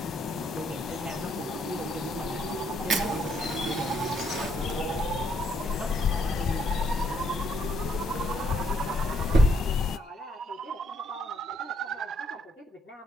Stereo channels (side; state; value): both; normal; correlation 0.71